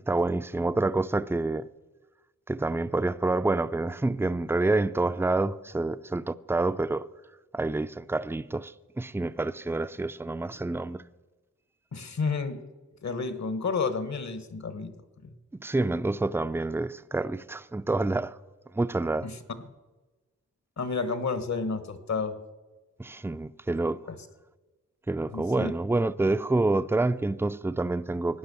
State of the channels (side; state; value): both; normal; correlation 0.79